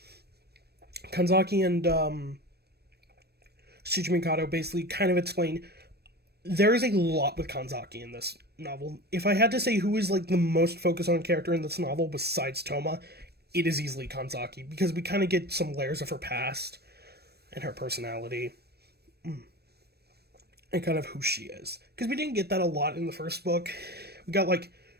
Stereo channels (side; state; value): left; late; 0.47 ms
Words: Kanzaki and Shuji Mikado basically kind of explain there is a lot with Kanzaki in this novel. If I had to say who is like the most focused on character in this novel besides Toma, it is easily Kanzaki, because we kind of get some layers of her past and her personality and kind of who she is. Because we didn't get that a lot in the first book. We got like